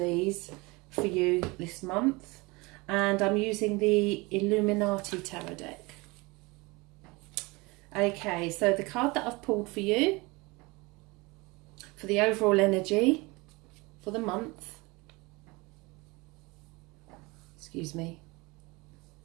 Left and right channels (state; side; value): quieter; left; 24.8 dB